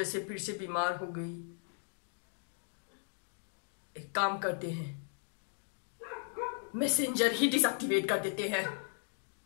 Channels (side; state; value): right; silent; 53 dB below the other